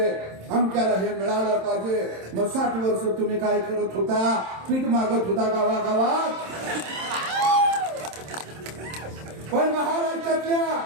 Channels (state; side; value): late; left; 27 ms